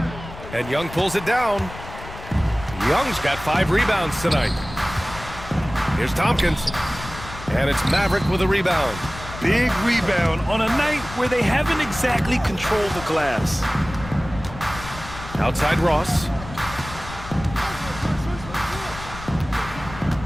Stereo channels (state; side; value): noise; left; rumble, 13 dB below the sound